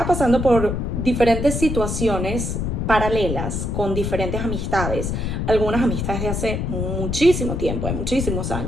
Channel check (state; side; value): noise; left; rumble, 2 dB below the sound